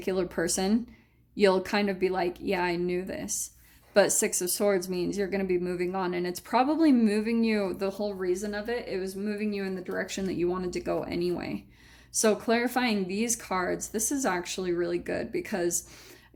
person, you'll kind of be like, yeah, I knew this. But Six of Swords means you're going to be moving on, and it's probably moving you, the whole reason of it was moving you in the direction that you wanted to go anyway. So clarifying these cards, this is actually really good, because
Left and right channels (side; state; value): both; identical; correlation 1.00